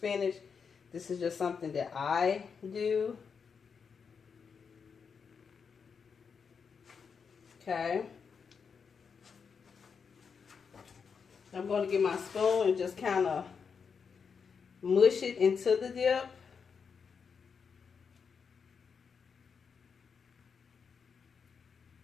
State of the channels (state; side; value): quieter; right; 6.1 dB